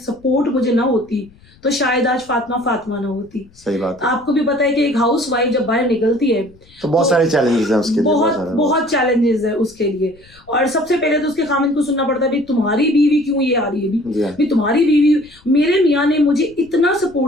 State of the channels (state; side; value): noise; left; rumble, 27 dB below the sound